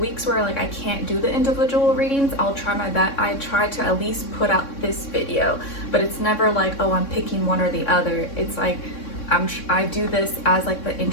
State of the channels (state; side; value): late; right; 3.6 ms